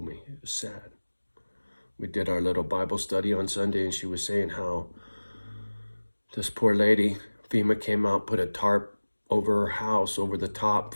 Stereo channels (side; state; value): both; inverted; correlation -1.00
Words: me, it was sad. We did our little Bible study on Sunday, and she was saying how this poor lady, FEMA came out, put a tarp over her house, over the top